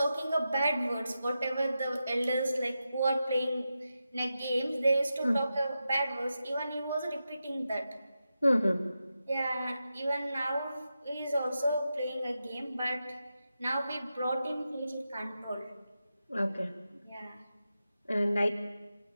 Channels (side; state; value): both; inverted; correlation -0.90